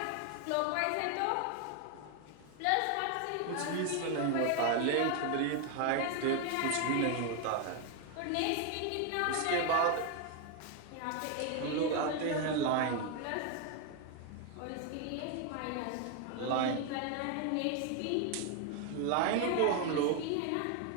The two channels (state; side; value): different; both; correlation 0.01